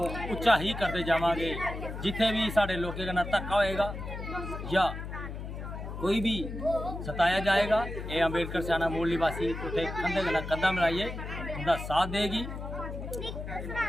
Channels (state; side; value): noise; left; hum, 8 dB below the sound